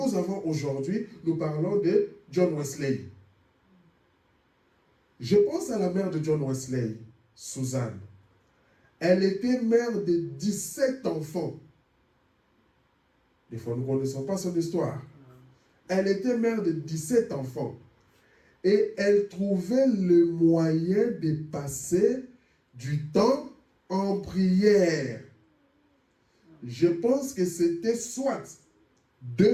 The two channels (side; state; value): both; identical; correlation 1.00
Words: avons aujourd'hui, nous parlons de John Wesley. Je pense à la mère de John Wesley, Suzanne. Elle était mère de 17 enfants. Des fois, nous ne connaissons pas son histoire. Elle était mère de 17 enfants. Et elle trouvait le moyen de passer du temps en prière. Je pense que c'était soit